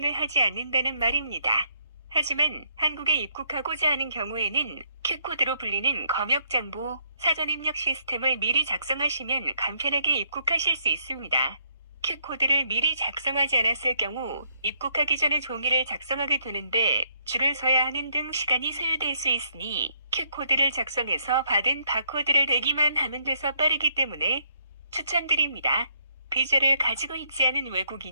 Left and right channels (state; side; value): inverted; both; correlation -0.71